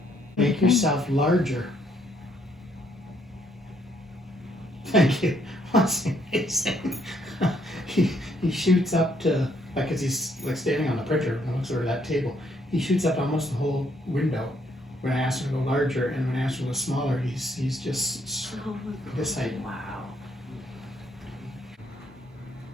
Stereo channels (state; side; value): normal; both; correlation 0.70